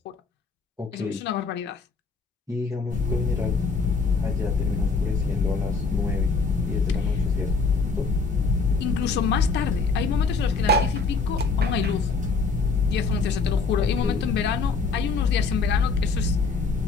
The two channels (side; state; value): right; quieter; 4.4 dB